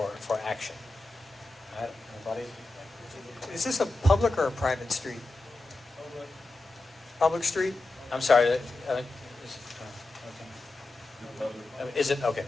action. All right, anybody? Is this a public or a private street? Public street? I'm sorry. Is it? Okay,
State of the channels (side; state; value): right; quieter; 3.1 dB